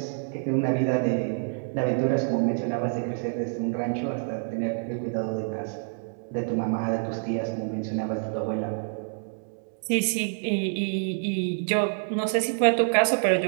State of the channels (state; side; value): silent; left; 60 dB below the other